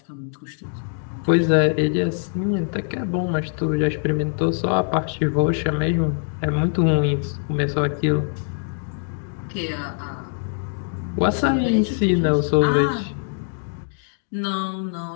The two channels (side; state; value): right; silent; digital silence